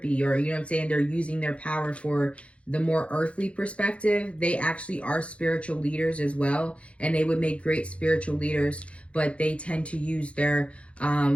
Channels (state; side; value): late; right; 0.062 ms